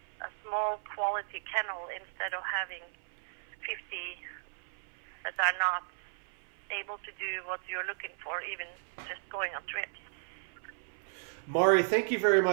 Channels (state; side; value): silent; left; 55 dB below the other